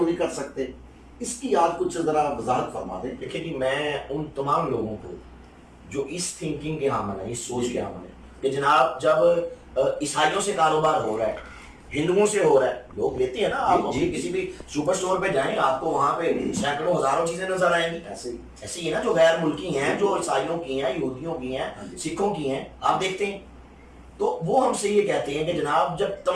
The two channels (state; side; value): identical; both; correlation 1.00